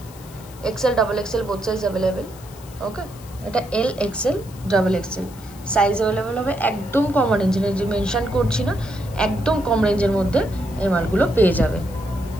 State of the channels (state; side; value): noise; left; hiss, 21 dB below the sound